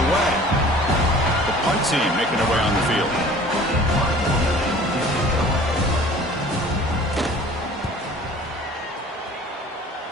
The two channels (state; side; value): normal; both; correlation 0.47